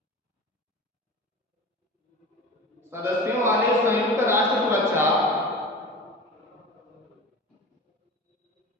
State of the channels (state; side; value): normal; both; correlation 0.34